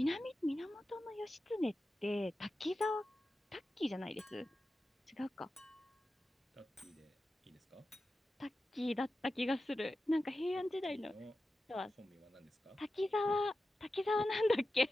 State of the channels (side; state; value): both; normal; correlation 0.93